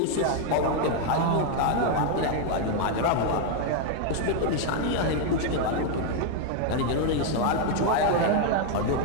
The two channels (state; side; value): different; both; correlation 0.00